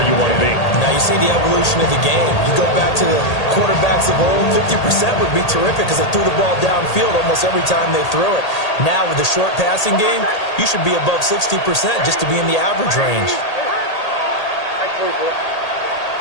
you want to be. Now you see the evolution of the game. You go back to the quarterbacks of old, 50% would be terrific because they threw the ball downfield almost every time they threw it. Now with the short passing game, you should be above 60% just to be in the average range.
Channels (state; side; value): late; right; 1.8 ms